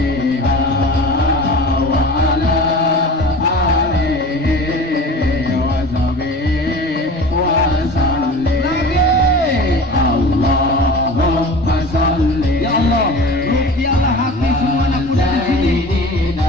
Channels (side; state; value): both; normal; correlation 0.37